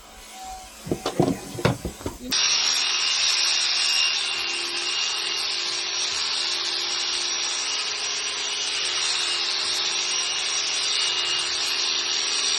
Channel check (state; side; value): identical; both; correlation 1.00